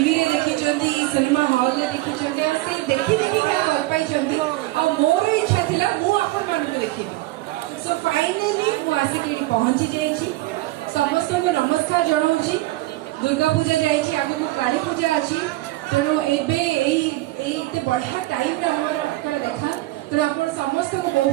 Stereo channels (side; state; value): left; quieter; 18.6 dB